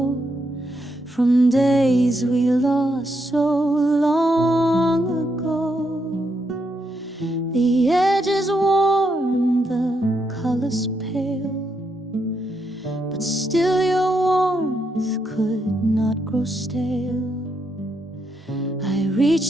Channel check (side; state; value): both; normal; correlation 0.80